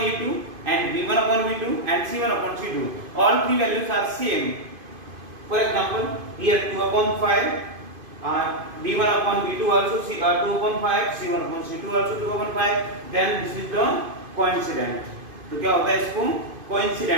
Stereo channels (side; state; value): left; late; 2.5 ms